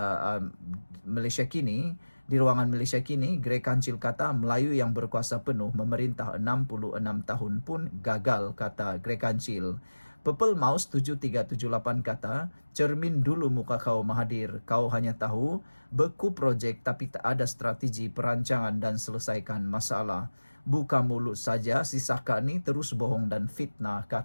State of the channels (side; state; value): both; inverted; correlation -1.00